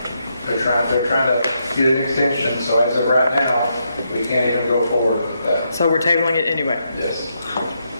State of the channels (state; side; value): inverted; both; correlation -0.80